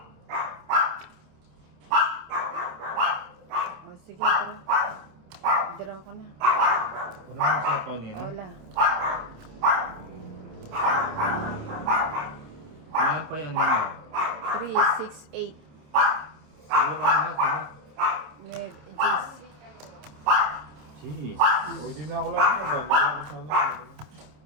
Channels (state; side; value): late; left; 27 ms